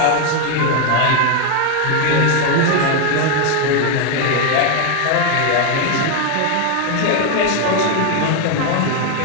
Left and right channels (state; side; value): different; both; correlation 0.01